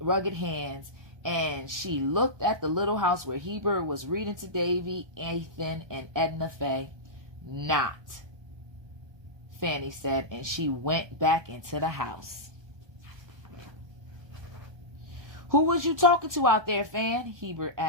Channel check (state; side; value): late; left; 1.3 ms